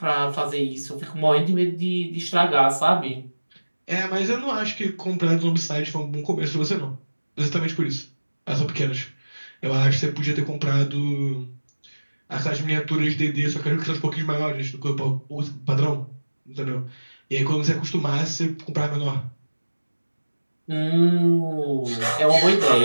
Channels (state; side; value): inverted; both; correlation -1.00